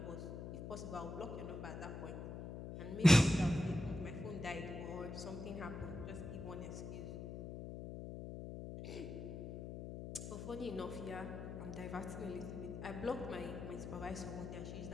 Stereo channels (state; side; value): noise; left; hum, 7 dB below the sound